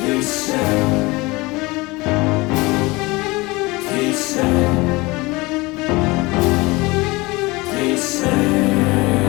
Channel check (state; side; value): quieter; right; 23.2 dB